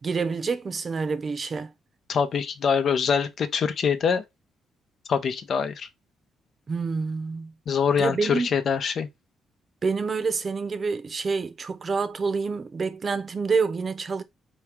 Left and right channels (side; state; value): both; normal; correlation 0.78